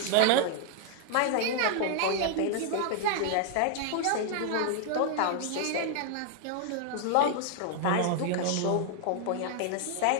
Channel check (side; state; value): both; different; correlation 0.00